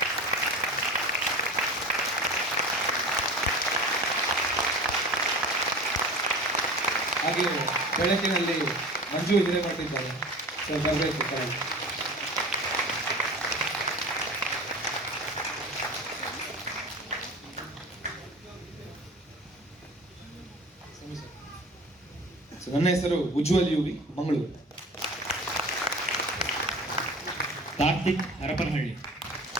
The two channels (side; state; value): both; normal; correlation 0.37